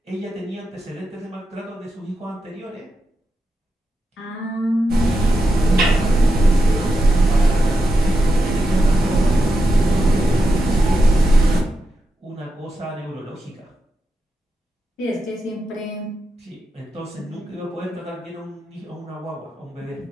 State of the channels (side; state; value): both; normal; correlation 0.87